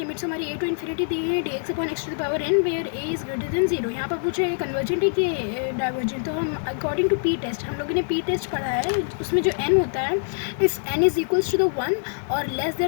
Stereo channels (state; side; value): silent; right; digital silence